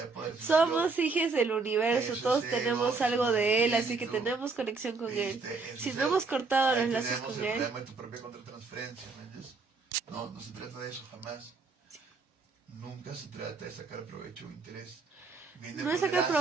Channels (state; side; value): quieter; left; 4.2 dB